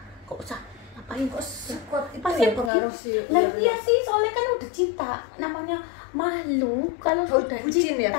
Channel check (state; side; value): drops out; right; at 2.7 s